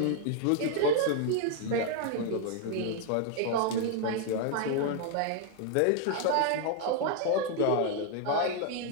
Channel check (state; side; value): different; both; correlation 0.00